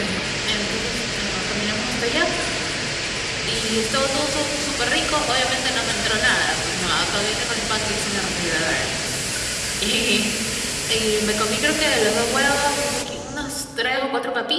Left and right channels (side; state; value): both; identical; correlation 1.00